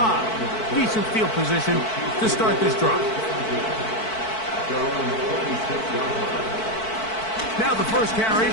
Decent field position to start this drive. Now the first carry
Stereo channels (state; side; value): late; right; 4.5 ms